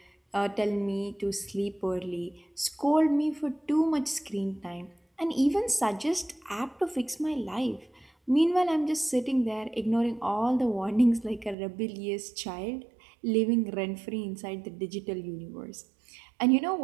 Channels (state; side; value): drops out; left; at 11.6 s